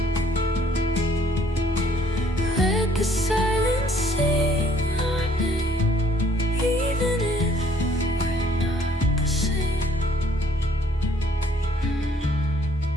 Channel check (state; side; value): normal; both; correlation 0.62